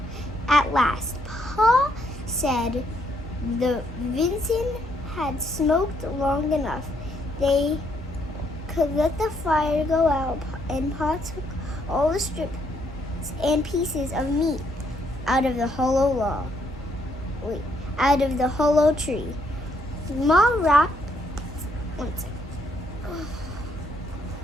At last, Pa said the venison had smoked long enough. They could let the fire go out, and Pa took all the strips and pieces of meat out of the hollow tree. Ma wrapped 1 second.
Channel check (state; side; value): normal; both; correlation 0.73